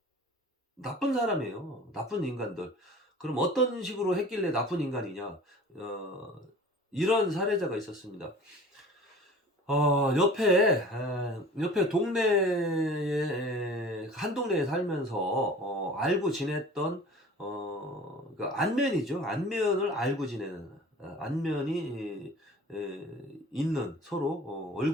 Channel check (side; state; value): both; normal; correlation 0.43